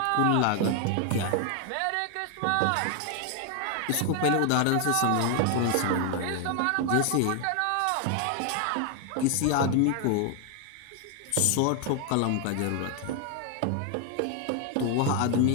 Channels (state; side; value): different; both; correlation 0.00